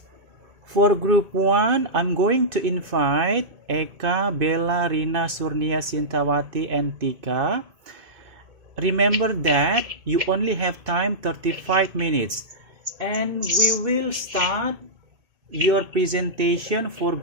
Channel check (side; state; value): left; late; 2.6 ms